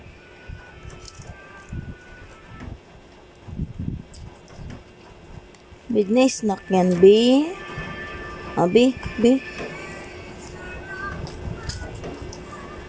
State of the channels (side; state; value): both; identical; correlation 1.00